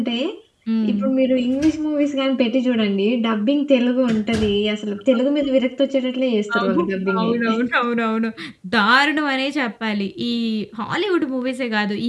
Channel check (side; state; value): both; identical; correlation 1.00